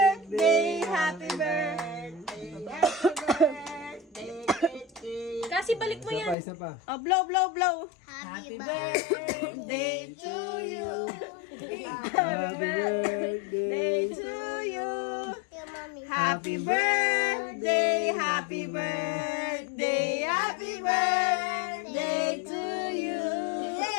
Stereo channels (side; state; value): right; drops out; at 6.4 s